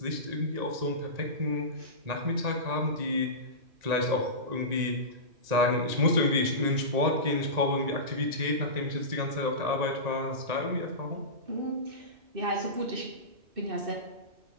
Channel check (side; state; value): left; late; 1.9 ms